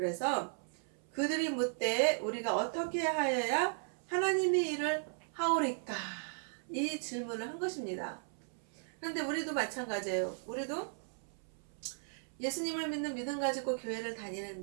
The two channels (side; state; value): left; silent; 54 dB below the other